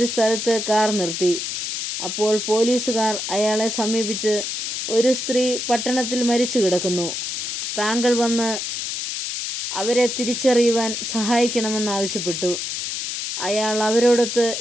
സ്ഥലത്ത് കാർ നിർത്തി. അപ്പോൾ പോലീസുകാർ അയാളെ സമീപിച്ച്, ഒരു സ്ത്രീ പട്ടണത്തിൽ മരിച്ചു കിടക്കുന്നു, താങ്കൾ വന്ന് അവരെ തിരിച്ചറിയുവാൻ സഹായിക്കണമെന്നാവശ്യപ്പെട്ടു. അയാൾ അവരോടൊത്ത്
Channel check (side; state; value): left; noise; hiss, 4 dB below the sound